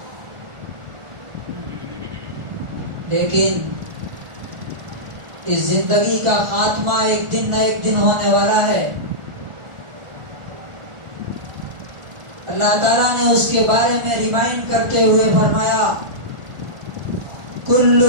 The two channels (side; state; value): left; late; 1.4 ms